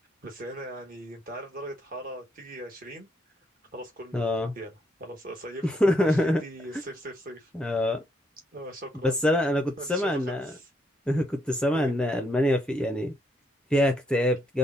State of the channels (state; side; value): normal; both; correlation 0.75